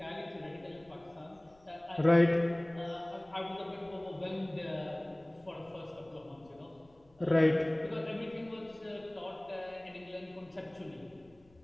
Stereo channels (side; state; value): left; noise; rumble, 29 dB below the sound